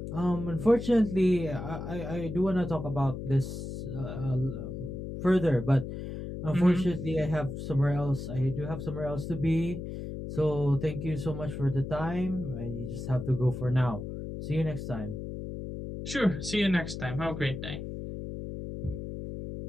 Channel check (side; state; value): left; noise; hum, 7 dB below the sound